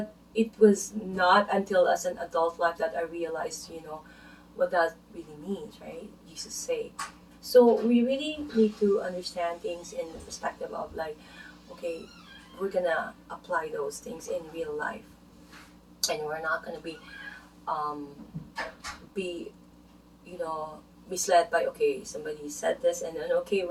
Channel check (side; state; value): both; identical; correlation 1.00